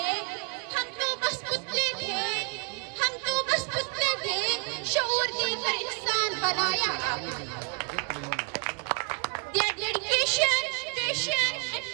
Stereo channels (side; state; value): left; quieter; 35.2 dB